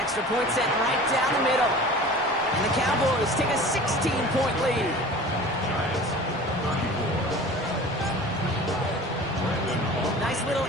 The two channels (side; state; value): both; normal; correlation 0.40